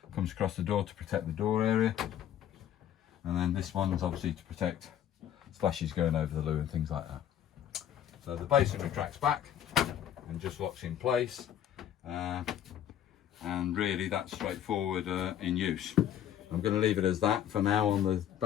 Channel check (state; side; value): quieter; right; 10.4 dB